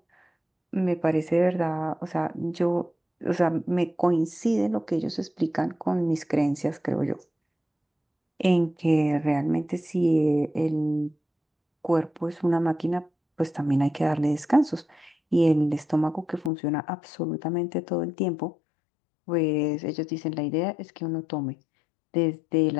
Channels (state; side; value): drops out; right; at 16.5 s